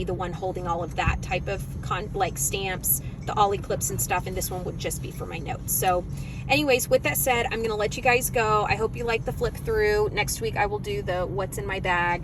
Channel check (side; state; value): both; identical; correlation 1.00